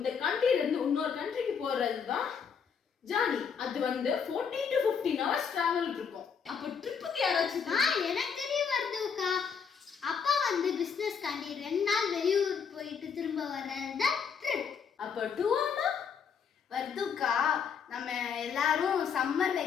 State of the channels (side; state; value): right; quieter; 6.6 dB